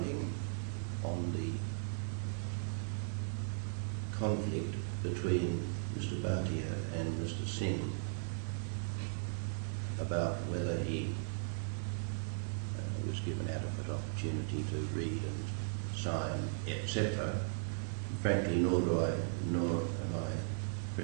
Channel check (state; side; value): silent; left; digital silence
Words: on the conflict between Mr. Bhatia and Mr. Singh about whether he was given adequate opportunity to read and sign, etc. Frankly, nor am I